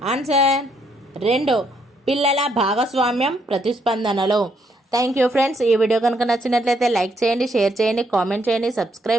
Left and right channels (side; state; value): both; normal; correlation 0.73